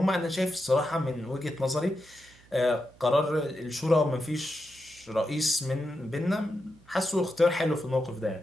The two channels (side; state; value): right; noise; hum, 27 dB below the sound